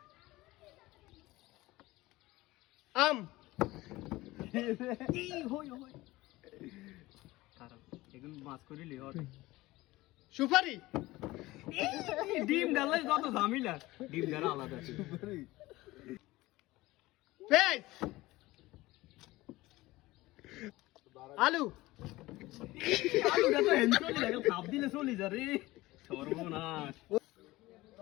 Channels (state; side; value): quieter; right; 19.0 dB